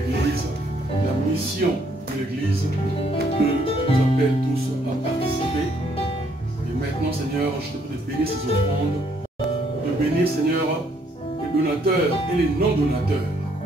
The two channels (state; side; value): normal; both; correlation 0.69